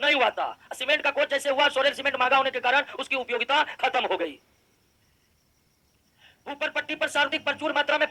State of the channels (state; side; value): identical; both; correlation 1.00